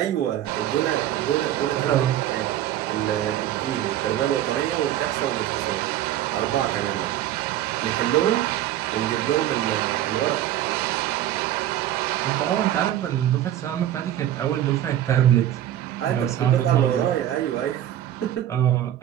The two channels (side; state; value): left; quieter; 12.2 dB